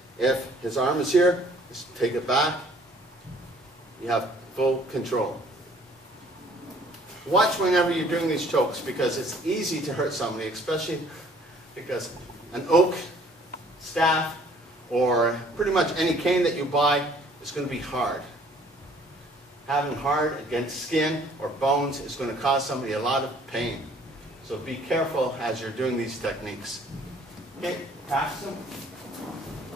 If his arm is here, just take it back. You have full control. Watch whenever you're doing these chokes, because it's easy to hurt somebody, especially because an oak staff or pretty much any cane that you buy is going to be hard. Having hard against skin or bones is going to cause somebody a lot of pain. So be careful as you're doing these techniques. Okay, pass them.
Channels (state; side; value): normal; both; correlation 0.57